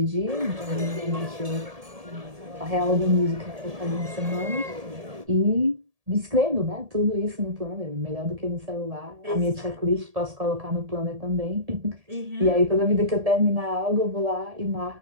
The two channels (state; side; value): late; left; 1.7 ms